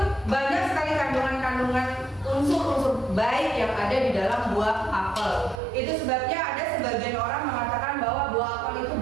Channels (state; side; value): drops out; left; at 5.6 s